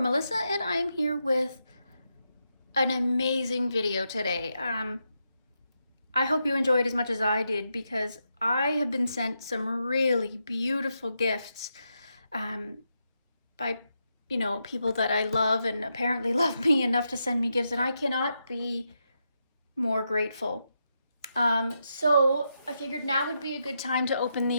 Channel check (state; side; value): inverted; both; correlation -0.84